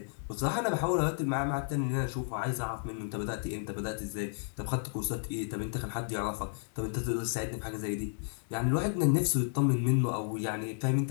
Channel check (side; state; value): right; silent; digital silence